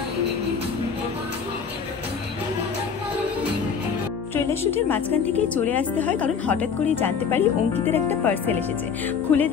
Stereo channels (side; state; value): right; quieter; 6.4 dB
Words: ট্রেলার শুটের মাঝখান থেকেই চলে আসতে হয়, কারণ হঠাৎ করেই জানতে পারি অঙ্কিতের একটা পার্সেল এসেছে। খুলে